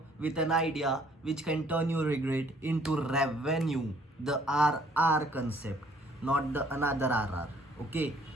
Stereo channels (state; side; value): normal; both; correlation 0.61